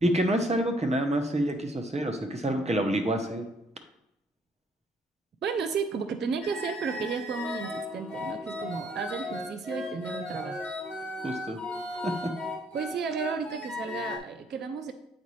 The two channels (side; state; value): both; normal; correlation 0.66